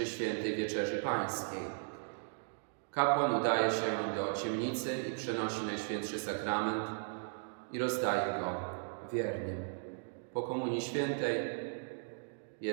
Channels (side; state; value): left; silent; digital silence